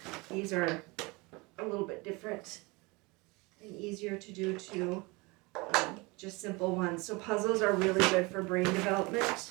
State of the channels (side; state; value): left; quieter; 25.7 dB